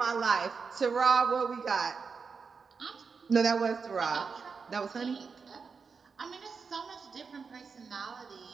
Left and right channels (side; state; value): left; quieter; 5.3 dB